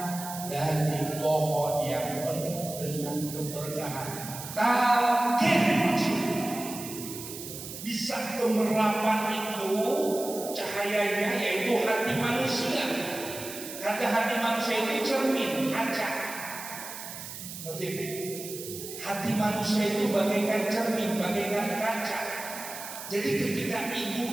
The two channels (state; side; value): noise; right; hiss, 10 dB below the sound